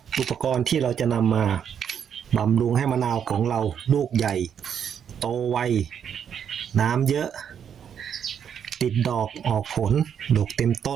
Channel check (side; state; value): left; quieter; 8.2 dB